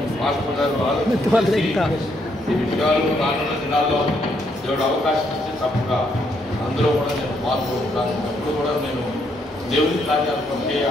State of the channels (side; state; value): both; normal; correlation 0.74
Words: మాస్టర్ గారు ఆలోచించి ఈ విషయాలు రానున్న దినాల్లో దేవుడు అవకాశం ఇస్తే తప్పగా అందులో కూడా నేను పాల్గొంటాను. అప్పుడు కూడా నేను దేవుని కార్యాలు పొందే